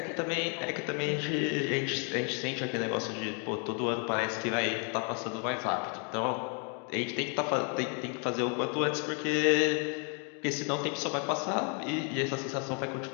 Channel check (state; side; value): quieter; right; 38.4 dB